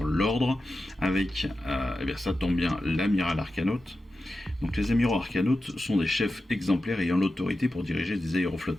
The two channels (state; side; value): normal; both; correlation 0.92